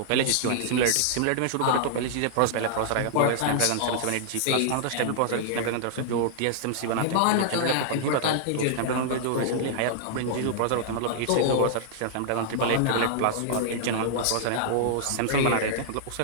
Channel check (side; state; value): both; different; correlation -0.01